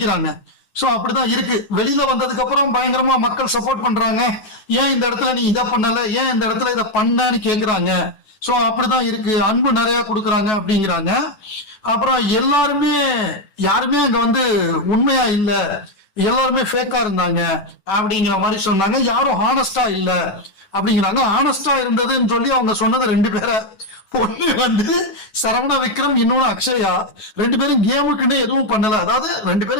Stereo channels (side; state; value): right; late; 10 ms